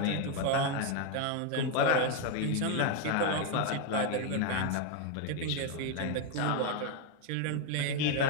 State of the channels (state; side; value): different; both; correlation 0.01